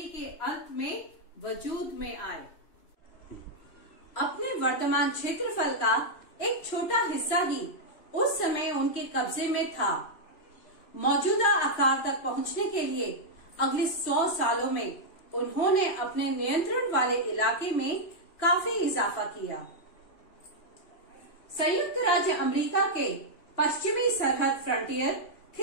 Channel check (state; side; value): late; right; 3.0 ms